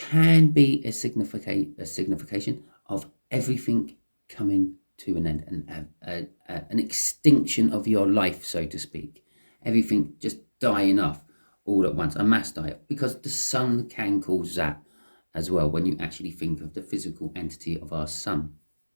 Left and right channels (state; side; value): inverted; both; correlation -1.00